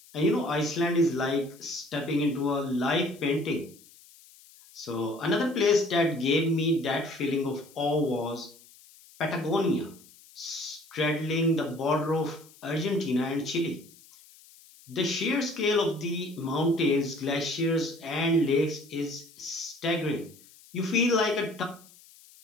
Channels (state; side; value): noise; left; hiss, 24 dB below the sound